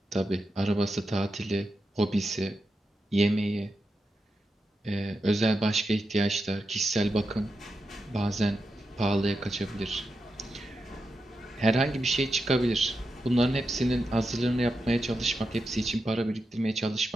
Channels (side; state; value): both; normal; correlation 0.88